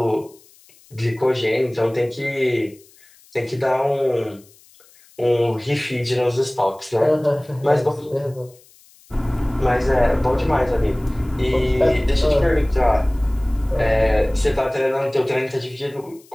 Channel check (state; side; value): noise; left; hiss, 28 dB below the sound